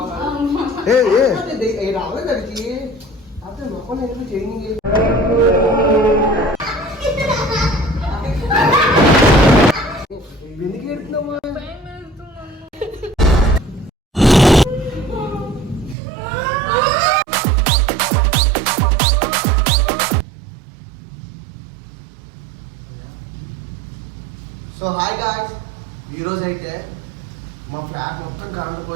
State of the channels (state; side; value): drops out; left; at 16.0 s